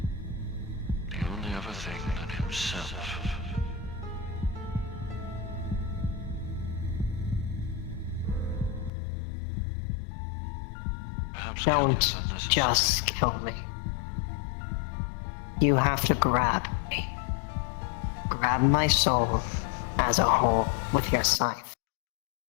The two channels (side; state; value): right; drops out; at 8.9 s